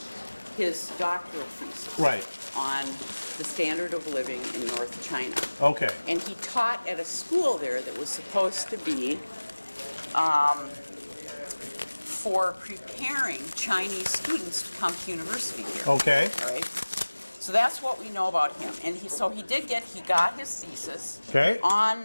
his doctoral thesis Right. on the standard of living in North China. Okay. And he taught at a school there that was supposed to be for preparing Chinese students to come to university here. Okay. All right. So that's what we know about him. And he got his thesis Okay.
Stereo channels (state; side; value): inverted; both; correlation -1.00